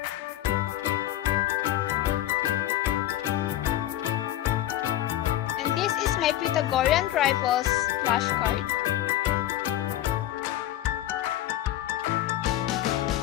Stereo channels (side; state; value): right; quieter; 13.4 dB